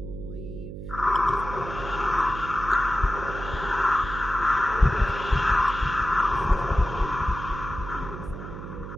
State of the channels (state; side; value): noise; right; hum, 10 dB below the sound